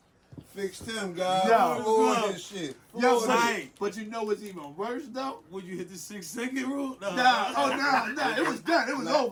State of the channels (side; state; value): both; identical; correlation 1.00